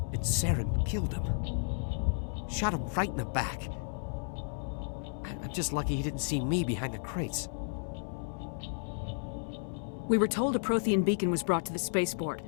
And Saren killed him. Shot him right in the back. I'm just lucky he didn't see me behind the crates. We were told a Prothean beacon was brought to the spaceport.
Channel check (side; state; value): right; silent; 56 dB below the other